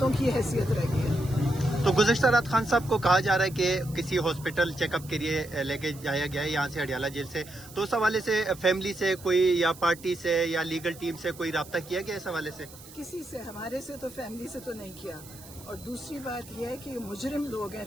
کی حیثیت رہ گئی ہے. تو گزشتہ رات خان صاحب کو کہا جا رہا ہے کہ کسی ہاسپٹل چیک اپ کے لیے لے کے جایا گیا ہے یہاں سے اڈیالہ جیل سے. تو اس حوالے سے فیملی سے کوئی یا پارٹی سے یا لیگل ٹیم سے کوئی رابطہ کیا گیا اس حوالے سے؟ کسی سے، ہمارے سے تو فیملی سے تو نہیں کیا. اور دوسری بات یہ ہے کہ یہ مجرم لوگ ہیں،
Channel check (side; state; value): right; noise; hiss, 19 dB below the sound